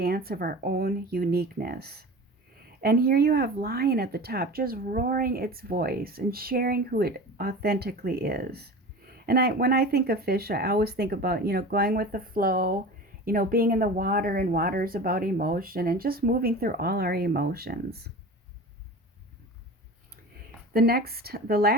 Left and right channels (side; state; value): both; normal; correlation 0.34